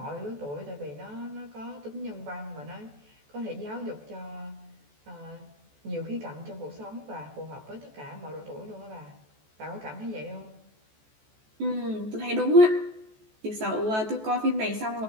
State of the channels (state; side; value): late; left; 14 ms